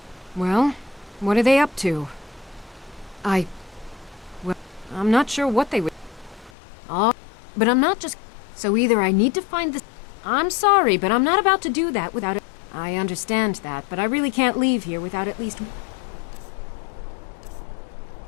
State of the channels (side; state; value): right; drops out; at 6.5 s